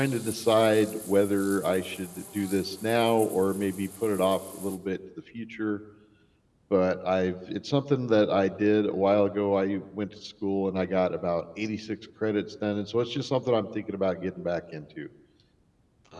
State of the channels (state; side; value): identical; both; correlation 1.00